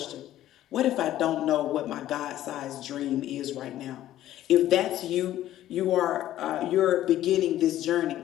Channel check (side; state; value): right; quieter; 13.2 dB